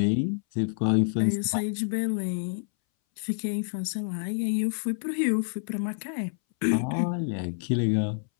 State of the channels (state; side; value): silent; right; 60 dB below the other